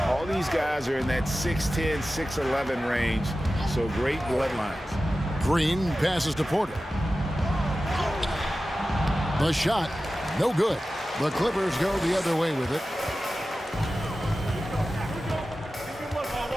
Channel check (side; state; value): both; normal; correlation 0.94